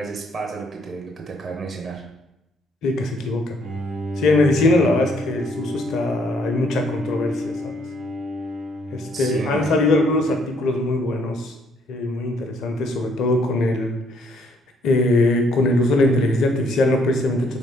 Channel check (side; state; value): both; normal; correlation 0.68